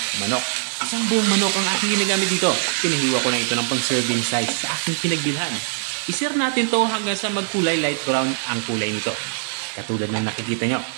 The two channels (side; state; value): left; silent; digital silence